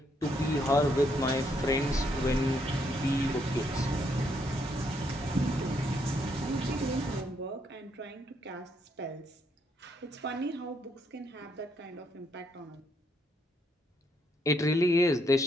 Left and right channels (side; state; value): both; normal; correlation 0.74